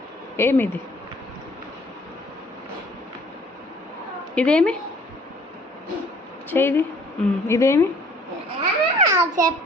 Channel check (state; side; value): normal; both; correlation 0.56